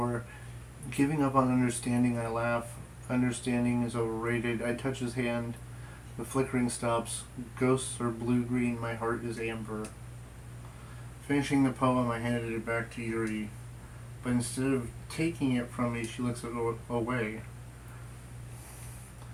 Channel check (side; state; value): both; identical; correlation 1.00